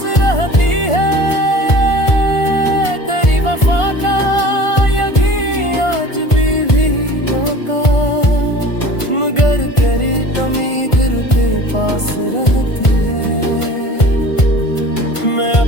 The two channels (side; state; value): right; late; 1.5 ms